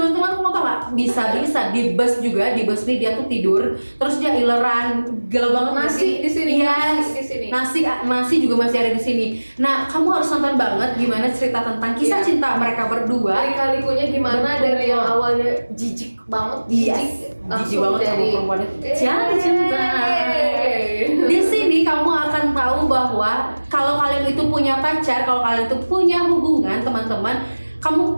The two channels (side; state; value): both; inverted; correlation -1.00